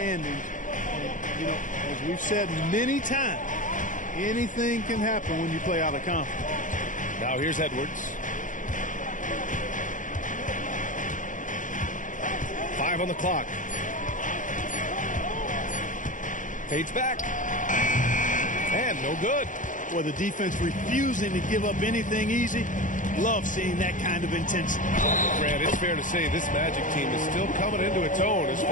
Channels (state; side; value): late; right; 0.37 ms